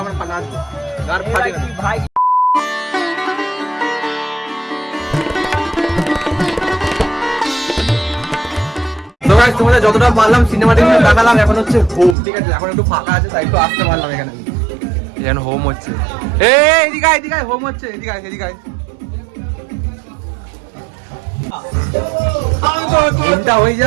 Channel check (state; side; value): drops out; left; at 12.2 s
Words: নাচ গার ফাটিয়ে ভাই তো গাইস তোমাদের যতটা পারলাম সিনেমাটিক দেখালাম এখন হচ্ছে হোম ঠিক আছে এখন একটু ফাঁকা আছে তাই একটু আসতে পারলাম এখানে এখন হোম হচ্ছে এদিকে হোম হচ্ছে এদিকে হোমটা হয়ে